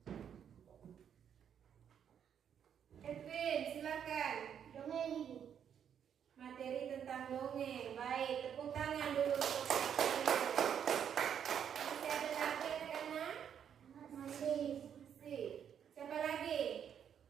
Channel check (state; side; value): quieter; left; 8.5 dB